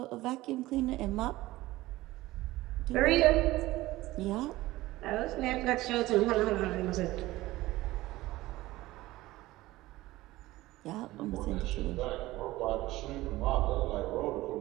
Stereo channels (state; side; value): quieter; left; 17.8 dB